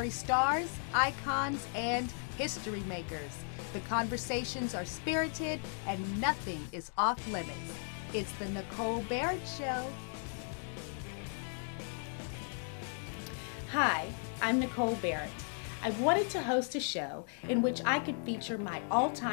stars, icons, and history makers. The conversations are spirited and nothing is off limits. It's the Nicole Barrett Show. Hi, I'm Nicole Barrett. I wanted to host a show in which I could feature my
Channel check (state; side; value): silent; right; 54 dB below the other